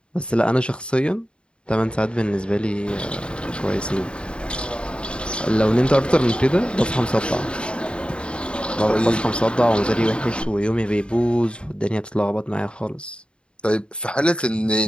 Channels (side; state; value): right; late; 0.053 ms